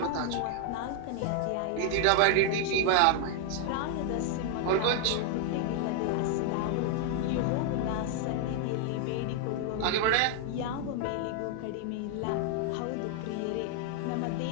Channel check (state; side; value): different; both; correlation 0.00